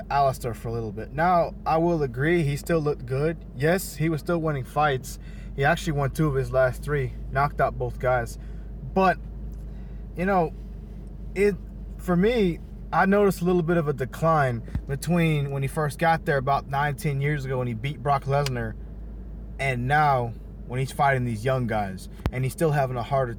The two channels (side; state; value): both; identical; correlation 1.00